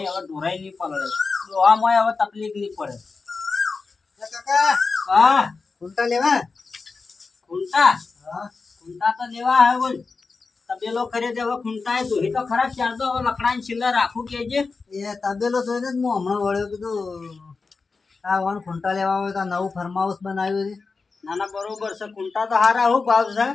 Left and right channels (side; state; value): right; quieter; 4.4 dB